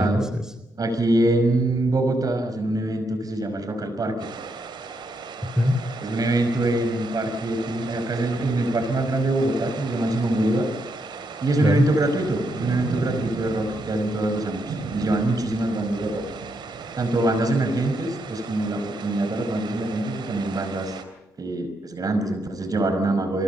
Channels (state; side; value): normal; both; correlation 0.79